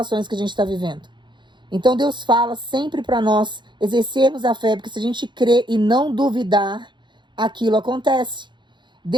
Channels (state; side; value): late; left; 0.22 ms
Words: que a gente está vivendo. Então Deus fala sempre para nós exercermos a fé, porque se a gente crer e não duvidar, aquilo acontece.